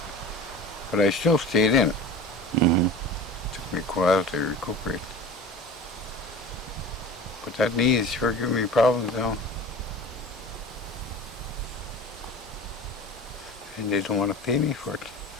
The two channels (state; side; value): normal; both; correlation 0.36